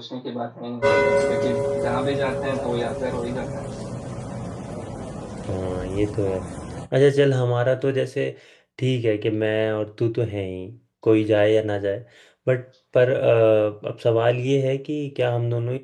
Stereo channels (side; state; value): both; identical; correlation 1.00